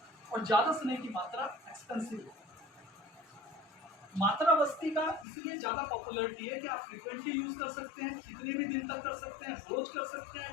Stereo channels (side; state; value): right; drops out; at 5.2 s